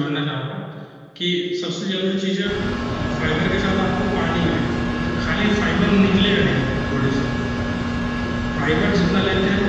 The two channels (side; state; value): both; identical; correlation 1.00